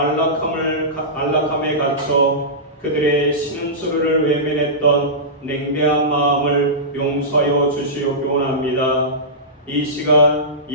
갇혀 그들의 신음소리를 외면했던 냉대한 마음을 용서하여 주시옵기 원합니다. 이 시간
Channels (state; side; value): normal; both; correlation -0.17